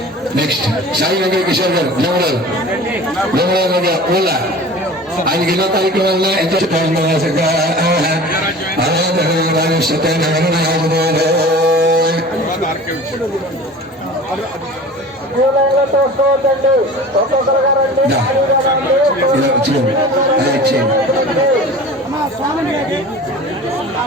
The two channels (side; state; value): both; normal; correlation 0.40